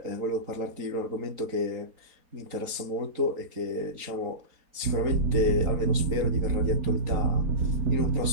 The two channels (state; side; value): late; left; 3.9 ms